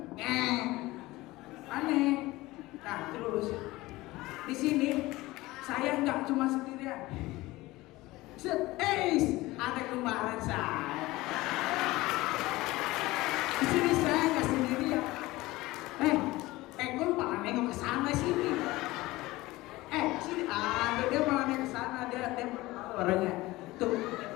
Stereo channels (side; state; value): right; quieter; 19.3 dB